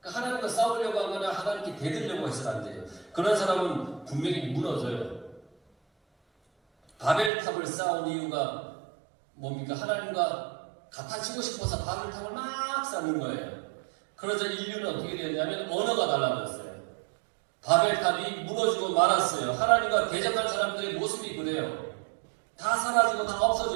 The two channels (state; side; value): drops out; left; at 7.3 s